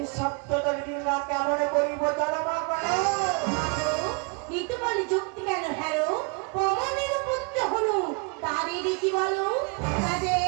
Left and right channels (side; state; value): left; quieter; 33.1 dB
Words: সপ্ততর ডিঙ্গা কেমন করিব চলমা করো কিন্তু বলে যুক্তি কেন হ্যালো পবনের পুত্র হলো তারই দেখি বলো